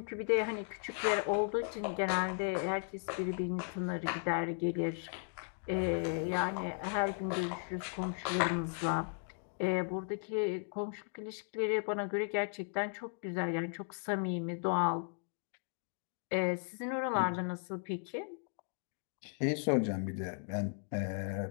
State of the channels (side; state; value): right; silent; 54 dB below the other